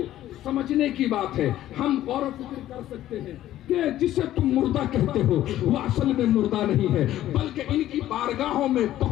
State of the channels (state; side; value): quieter; right; 13.4 dB